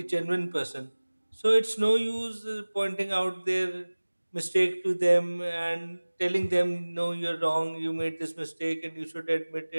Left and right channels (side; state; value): both; inverted; correlation -1.00